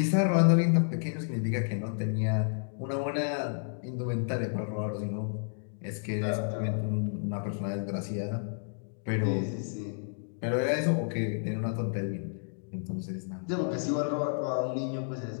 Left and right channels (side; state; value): right; silent; digital silence